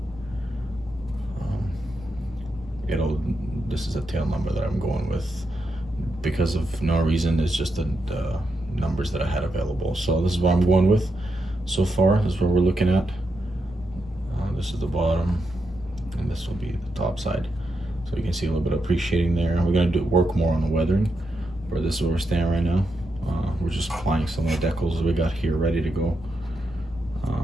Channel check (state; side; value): noise; right; rumble, 21 dB below the sound